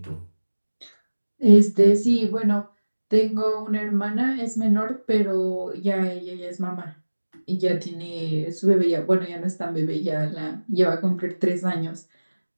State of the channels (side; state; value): both; inverted; correlation -1.00